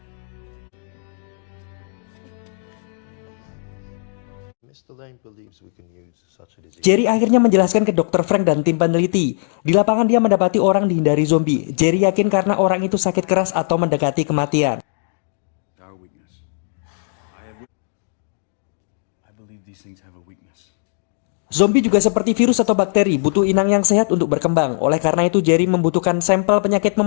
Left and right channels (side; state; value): right; silent; digital silence